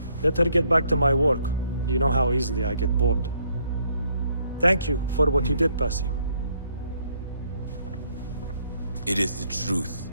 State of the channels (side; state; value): both; inverted; correlation -0.69